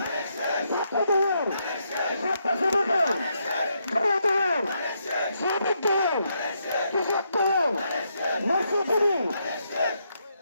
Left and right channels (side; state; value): both; inverted; correlation -0.78